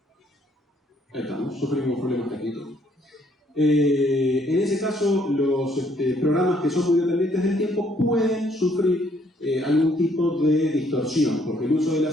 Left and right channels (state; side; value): normal; both; correlation 0.67